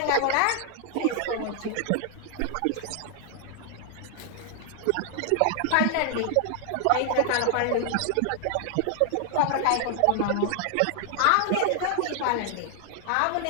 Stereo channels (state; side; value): different; both; correlation 0.00